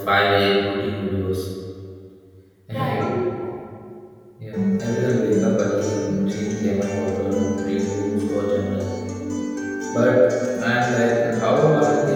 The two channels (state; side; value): identical; both; correlation 1.00